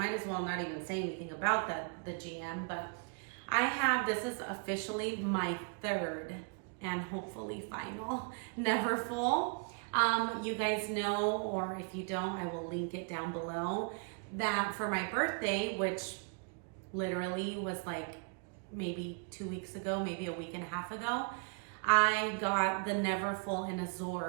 as well not even say anything about the GM. But This is officially my third and hopefully final Neverfull. You guys know, or if you don't, I will link it down below, that for my birthday, which literally was like maybe 2 weeks ago, maybe a week and a half ago, I got the Neverfull in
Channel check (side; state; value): left; quieter; 39.7 dB